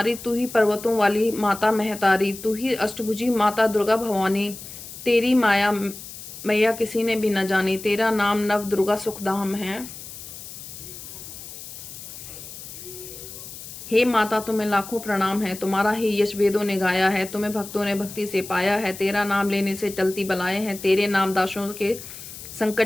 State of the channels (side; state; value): left; noise; hiss, 13 dB below the sound